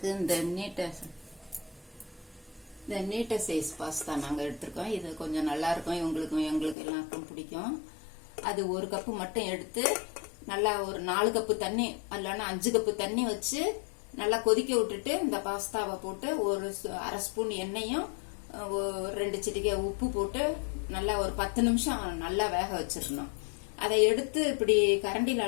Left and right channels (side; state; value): right; drops out; at 6.8 s